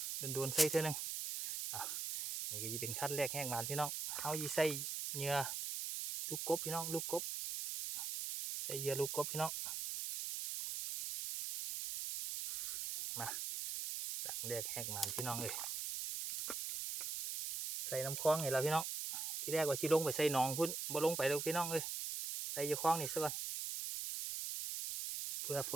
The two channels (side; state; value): right; noise; hiss, 3 dB below the sound